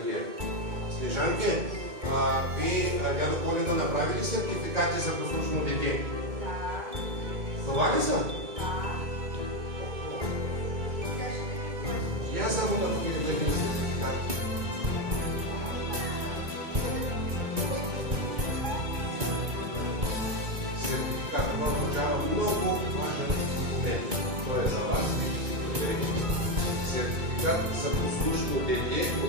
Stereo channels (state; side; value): late; left; 2.2 ms